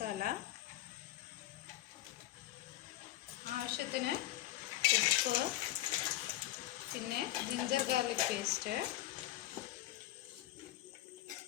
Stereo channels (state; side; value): quieter; right; 14.9 dB